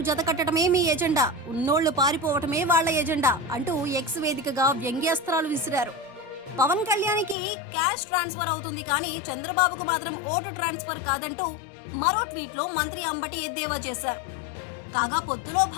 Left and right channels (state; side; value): drops out; right; at 7.4 s